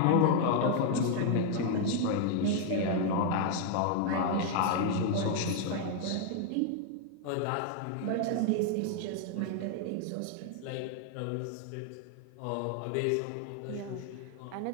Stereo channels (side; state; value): both; different; correlation 0.00